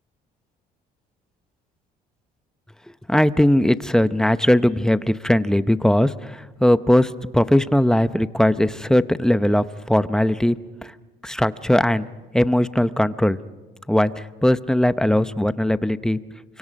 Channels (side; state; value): both; normal; correlation 0.98